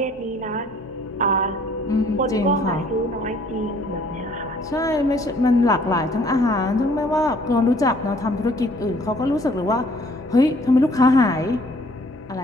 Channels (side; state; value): both; normal; correlation 0.59